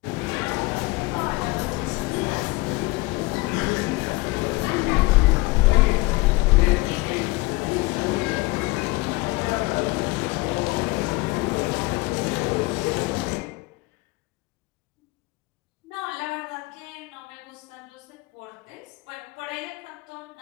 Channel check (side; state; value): right; quieter; 23.1 dB